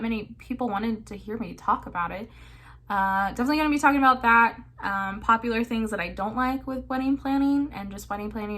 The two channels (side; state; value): both; identical; correlation 1.00